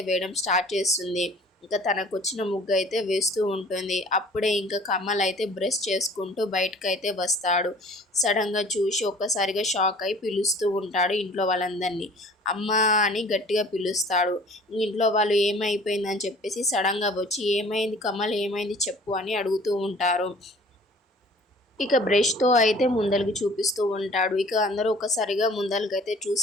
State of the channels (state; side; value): normal; both; correlation 0.50